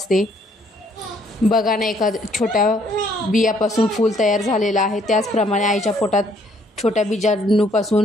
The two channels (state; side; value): normal; both; correlation 0.65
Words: बघा ना, एका छोट्या बियापासून फूल तयार झालेलं आहे. त्याचप्रमाणे आईच्या पोटात छोट्या